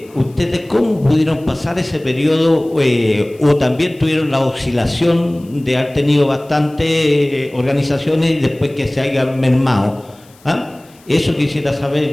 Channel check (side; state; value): left; noise; hiss, 29 dB below the sound